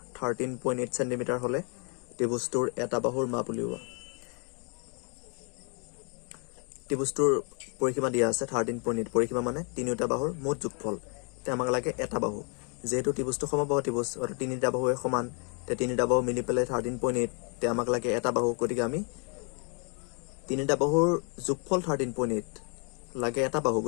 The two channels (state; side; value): quieter; right; 37.8 dB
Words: 13.8 সেন্টিমিটাৰ হলে ত্ৰিভুজটোৰ এটা বাহুৰ মাপ উলিওৱা ত্ৰিভুজটোৰ পৰিসীমা দিয়া আছে 13.8 পৰিসীমা মানে তিনিটা বাহুৰ মুঠ যোগফল তে আমাক লাগে এটা বাহু যেহেতু ত্ৰিভুজটো সমবাহু ত্ৰিভুজ অৰ্থাৎ তিনিটা বাহুৱে সমান তে তিনিটা বাহু মিলি পেলাই 13.8 তে আমাক লাগে এটা বাহু গতিকে আমি তিনিটা বাহুৰ যোগফল 13.8 লাগে এটা বাহু